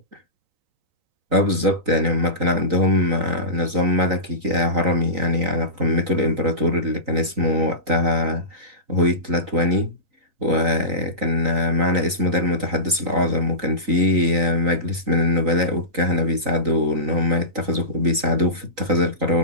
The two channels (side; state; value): left; late; 3.9 ms